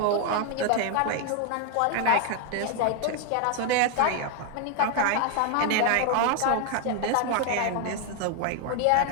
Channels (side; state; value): both; different; correlation 0.01